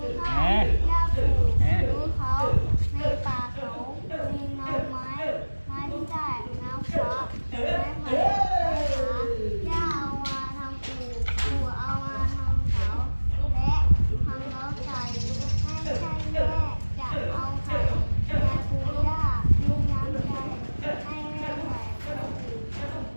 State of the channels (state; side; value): inverted; both; correlation -1.00